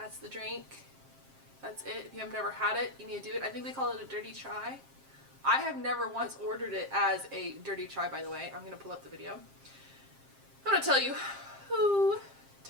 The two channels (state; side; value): late; left; 7.5 ms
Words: the drink. That's it. If you have never had it, you need to do it. I think they call it a dirty chai. I have never once ordered it as a dirty chai, by the way. I'm going to pull up the video. I'm going to tell you who